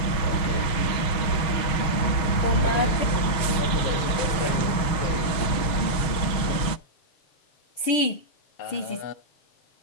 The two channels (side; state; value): right; late; 6.4 ms